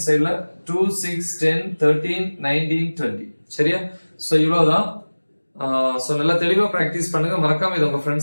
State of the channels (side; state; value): both; inverted; correlation -1.00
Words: 2 6 10 13 19 20. சரியா? சோ இவ்வளவுதான். சோ நல்லா தெளிவா பிராக்டிஸ் பண்ணுங்க. மறக்காம இத உங்க